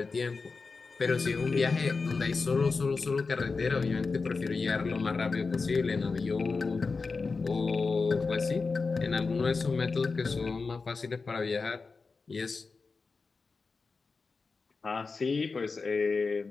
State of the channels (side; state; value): right; quieter; 4.4 dB